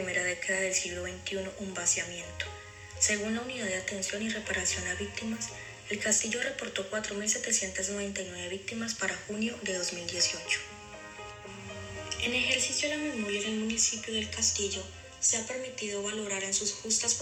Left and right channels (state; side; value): identical; both; correlation 1.00